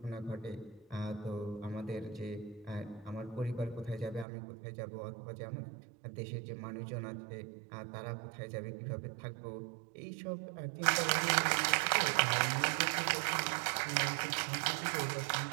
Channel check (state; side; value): drops out; left; at 4.2 s